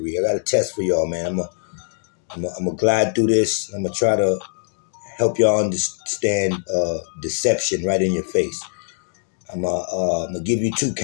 I got a test for y'all, man. I'm gonna glide through this. I'm gonna try to help y'all understand deception right in your face. I'm gonna give you two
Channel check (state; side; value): silent; right; digital silence